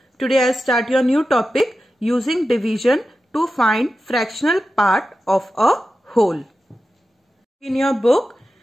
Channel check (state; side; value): normal; both; correlation 0.92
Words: today I'll start your new topic using division to find fractional part of a whole. In your book,